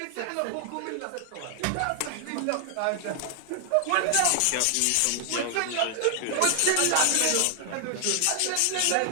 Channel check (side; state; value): both; different; correlation 0.00